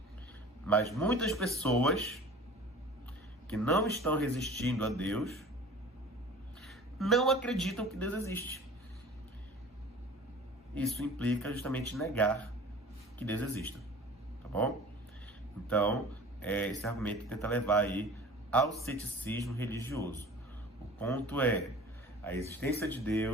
Mas muitas pessoas que não estão resistindo a Deus, não acreditam que Deus existe. Isso implica justamente negar que Deus exista, tá bom? Então, esse argumento tenta levar aí ao ceticismo religioso. O ponto é a existência de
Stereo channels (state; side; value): normal; both; correlation 0.42